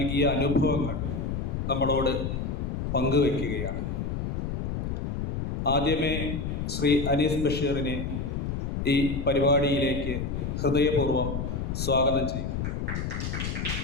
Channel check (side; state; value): left; noise; rumble, 2 dB below the sound